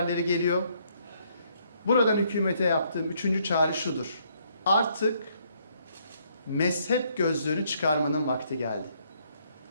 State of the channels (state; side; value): inverted; both; correlation -0.69